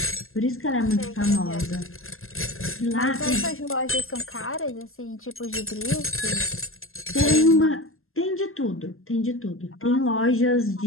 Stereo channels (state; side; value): late; right; 0.61 ms